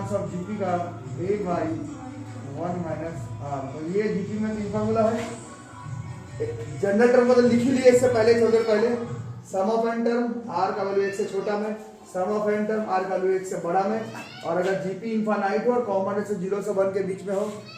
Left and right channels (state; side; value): identical; both; correlation 1.00